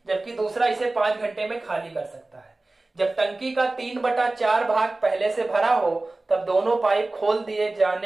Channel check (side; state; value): left; quieter; 3.0 dB